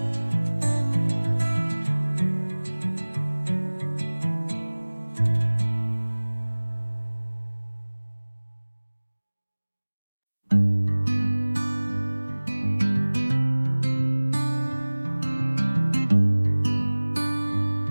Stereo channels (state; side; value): inverted; both; correlation -1.00